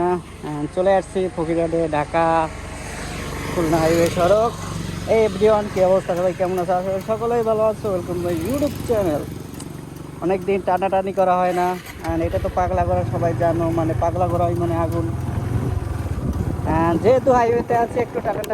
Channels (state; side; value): identical; both; correlation 1.00